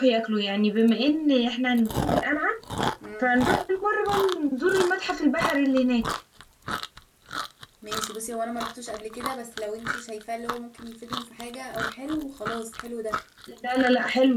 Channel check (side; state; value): both; identical; correlation 1.00